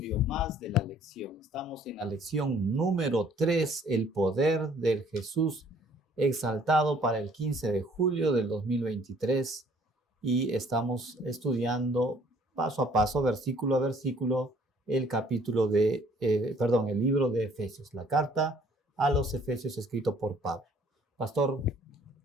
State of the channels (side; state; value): both; normal; correlation 0.59